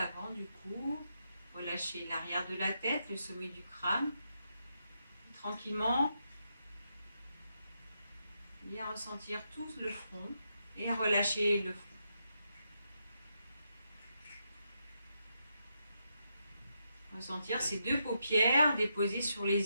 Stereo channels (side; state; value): both; inverted; correlation -0.82